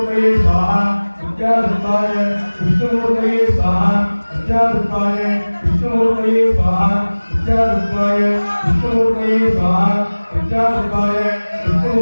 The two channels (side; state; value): both; inverted; correlation -1.00